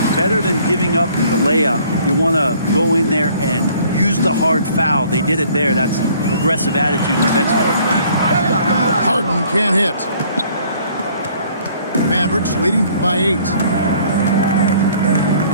better than giving up the layup. You want to go in there and use the hard foul. They did it there. That's aggressive attitude defensively. Harden can't hit. Mavericks leading by 8.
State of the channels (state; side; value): inverted; both; correlation -0.58